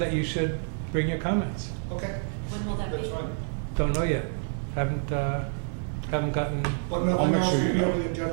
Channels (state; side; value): silent; left; 59 dB below the other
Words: you should bring your comments. okay. When will that That's be? fine. Don't know yet. Haven't gotten... But I'll nothing make else sure will you be know. on the